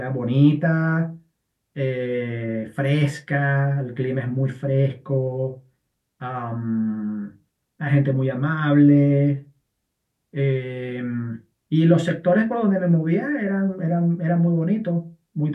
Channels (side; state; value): both; identical; correlation 1.00